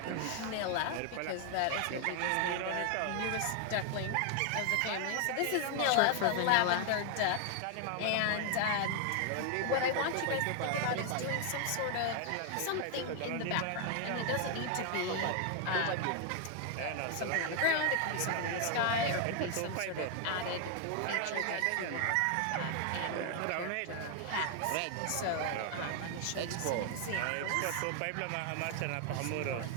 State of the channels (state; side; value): different; both; correlation 0.00